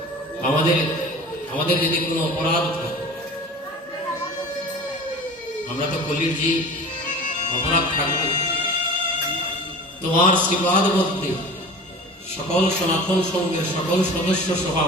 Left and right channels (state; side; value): normal; both; correlation 0.38